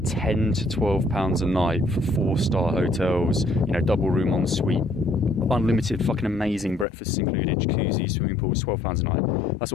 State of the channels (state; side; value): drops out; right; at 6.9 s